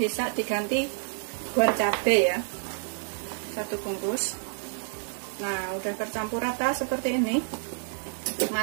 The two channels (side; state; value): left; silent; 59 dB below the other